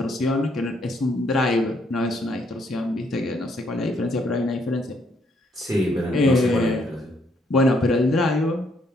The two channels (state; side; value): normal; both; correlation 0.71